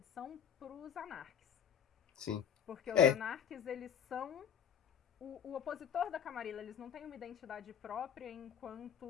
pros anarques. sim. Porque os É, anarques, eles são o opositor da Camarilla, eles não têm uma identidade própria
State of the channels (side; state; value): right; quieter; 8.3 dB